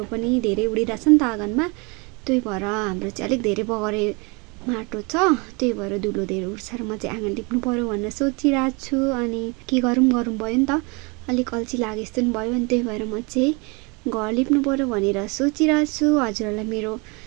पनि धेरै उडिरहेछ नि त आँगनमा। त्यही भएर हाम्रो चाहिँ अलिक धेरै बगरे माटो छ, त्यही भएर धुलो धेरै उड्छ र म चाहिँ आँगन लिप्नु पर्यो भनेर सोचिरहेको छु। अनि के गरौँ भयो नि त, अलिक अल्छी लागे जस्तो पनि भयो। अनि त्यही भएर म चाहिँ घर लिप्नु पर्यो भनेर सोचिरहेको छु। हजुरहरूलाई मेरो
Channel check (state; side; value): quieter; left; 29.7 dB